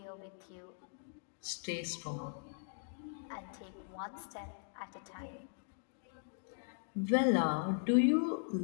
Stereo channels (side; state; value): right; silent; digital silence